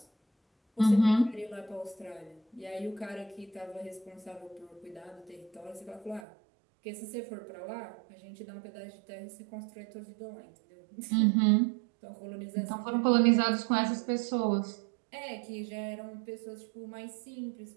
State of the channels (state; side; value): drops out; left; at 6.2 s